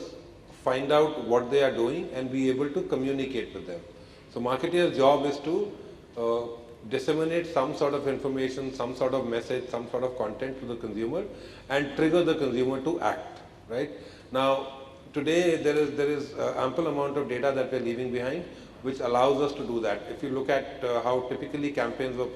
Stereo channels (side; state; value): both; identical; correlation 1.00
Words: find out what they are doing, and be able to communicate with them. So marketeers' job is to disseminate some sort of information, some sort of message, some sort of content to the consumer and trigger the consumer to act, right? Now, today there is ample amount of data that we're leaving behind, which allows us to do that. If you look at how typically campaigns were